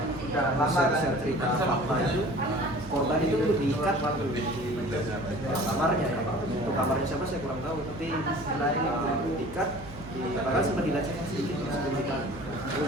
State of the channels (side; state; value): right; noise; hum, 15 dB below the sound